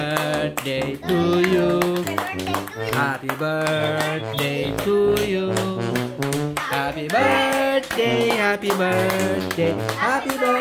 to you. Happy birthday to you. Happy birthday, happy birthday, happy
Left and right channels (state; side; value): identical; both; correlation 1.00